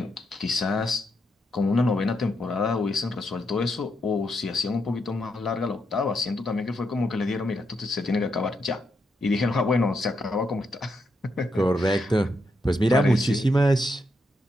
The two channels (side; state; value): both; normal; correlation 0.81